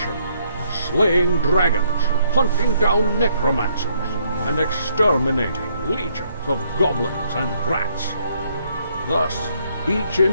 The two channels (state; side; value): inverted; both; correlation -0.70